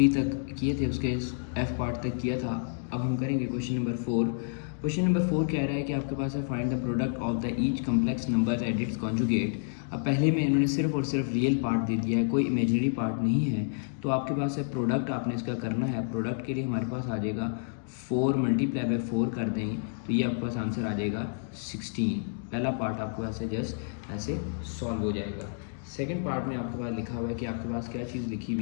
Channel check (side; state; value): right; silent; digital silence